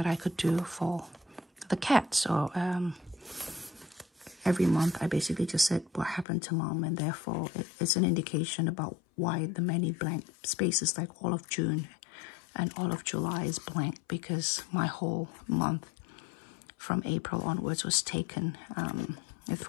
I could do for the cat. So every month I basically just said what happened to mom, and therefore it's an indication about why the many blank spaces, like all of June and all of July, is blank, because my whole month from April onwards was taken with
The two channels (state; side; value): drops out; right; at 6.2 s